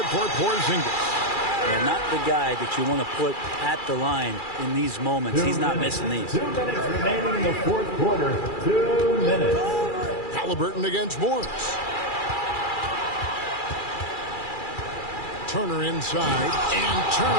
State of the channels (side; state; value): right; late; 2.4 ms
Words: for Porzingis. And not the guy that you want to put at the line in these moments. He's not missing these. 2 minutes remaining in the fourth quarter. 2 minutes. Halliburton against Morris. Turner inside. And